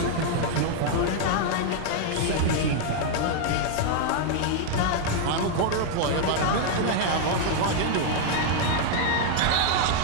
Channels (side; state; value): both; different; correlation 0.00